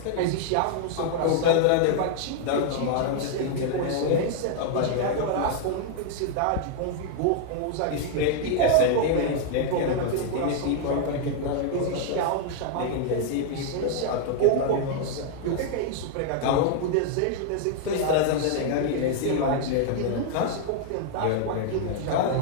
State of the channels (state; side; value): different; both; correlation 0.00